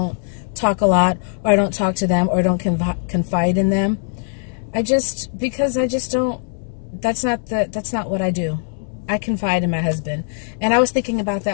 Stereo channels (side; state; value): right; silent; 64 dB below the other